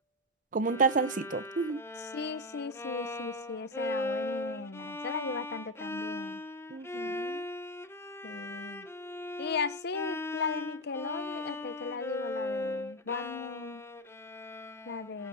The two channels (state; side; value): normal; both; correlation 0.11